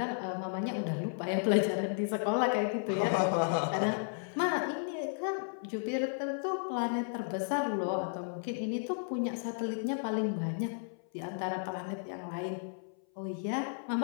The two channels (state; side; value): silent; right; 55 dB below the other